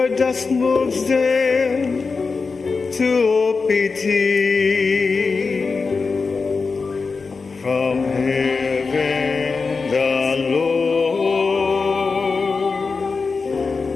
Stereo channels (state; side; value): quieter; right; 4.5 dB